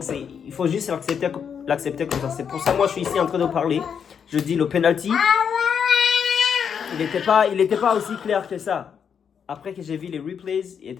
il faut juste l'accepter comme ça. C'est pour ça que moi, je suis ici en train de parler. Je dis le penalty. Il n'était pas aussi clair que ça. Après que j'ai vu les replays, il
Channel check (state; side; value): quieter; right; 7.3 dB